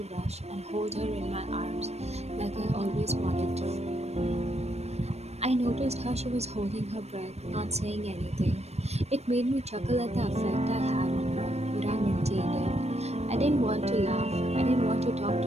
rush and hold her in my arms like I always wanted to. I noticed how she was holding her breath, not saying anything. It made me chuckle at the effect I had on her, but I maintained it. I didn't want to laugh. I didn't want to talk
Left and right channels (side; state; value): left; late; 0.31 ms